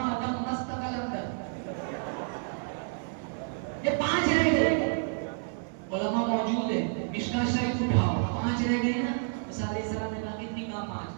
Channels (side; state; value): left; silent; digital silence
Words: دم مست قلندر. یہ 5 رہ گئے. علماء موجود ہیں, مشکاہ شریف اٹھاؤ, 5 رہ گئے نا. موسیٰ علیہ السلام نے کہا کتنی کہا 5.